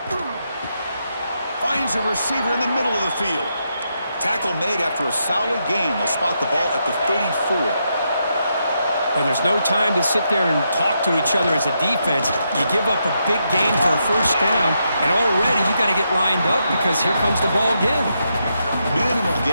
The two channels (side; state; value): both; inverted; correlation -0.81